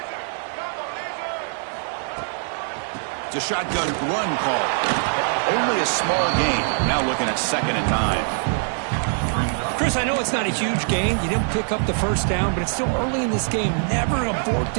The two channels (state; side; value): silent; left; 60 dB below the other